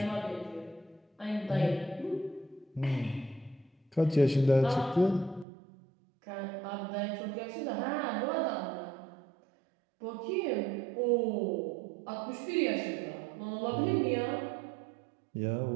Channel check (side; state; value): left; drops out; at 5.5 s